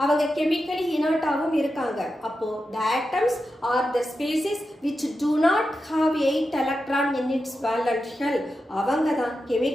அவங்க கெமிக்கலி இனர்ட்டாகவும் இருக்காங்க. அப்போ the atoms are the species which do not have 8 electron in its valence shell. அவங்க தான்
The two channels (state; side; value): normal; both; correlation 0.90